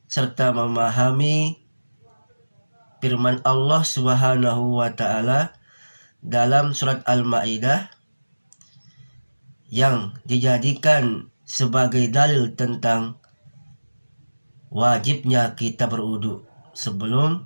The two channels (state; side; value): inverted; both; correlation -1.00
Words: serta memahami firman Allah Subhanahu wa Ta'ala dalam surat Al-Maidah yang dijadikan sebagai dalil tentang wajibnya kita berwudu sebelum